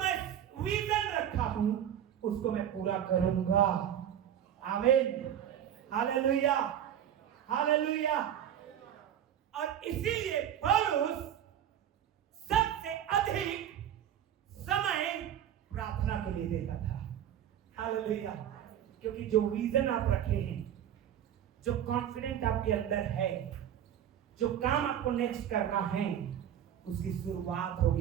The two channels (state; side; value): quieter; left; 10.1 dB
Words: विजन रखा हूं उसको मैं पूरा करूंगा। आमीन, हालेलुया, हालेलुया। और इसीलिए पौलुस सबसे अधिक समय प्रार्थना के लिए देता था। हालेलुया। क्योंकि जो विजन आप रखे हैं, जो कॉन्फिडेंट आपके अंदर है, जो काम आपको नेक्स्ट करना है, उसकी शुरुआत